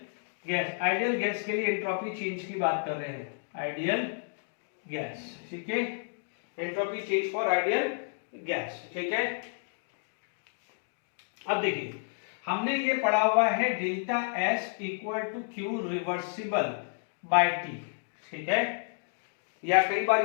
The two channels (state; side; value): silent; right; digital silence